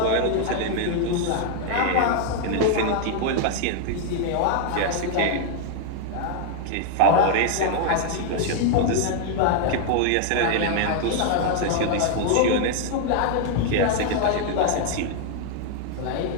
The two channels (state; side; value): different; both; correlation 0.00